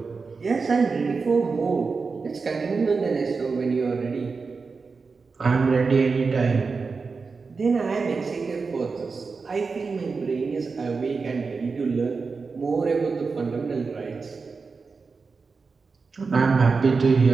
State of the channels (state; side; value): quieter; left; 4.6 dB